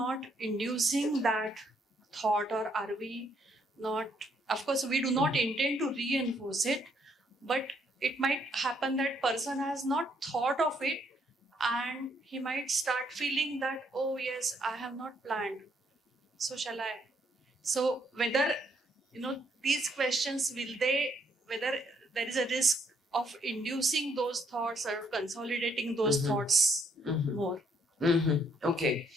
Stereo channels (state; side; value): normal; both; correlation 0.70